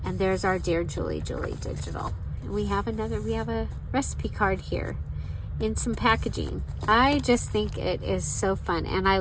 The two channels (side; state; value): both; identical; correlation 1.00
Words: and there's our Dear Julie digital. And we have a recipe card here in some packaging. I just think it is so fun, and I